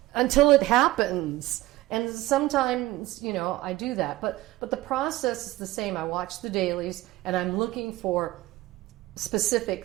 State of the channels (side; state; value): left; quieter; 17.8 dB